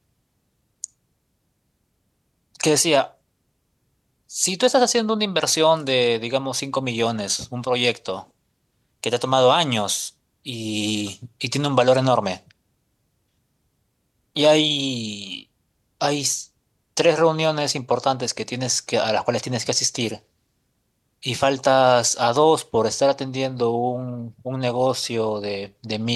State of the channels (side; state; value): both; identical; correlation 1.00